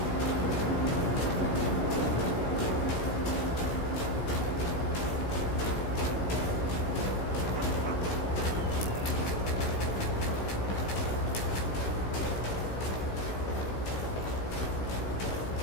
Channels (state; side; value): late; right; 16 ms